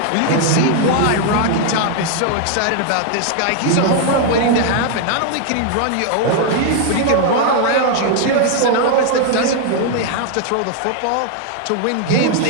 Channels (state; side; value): different; both; correlation 0.00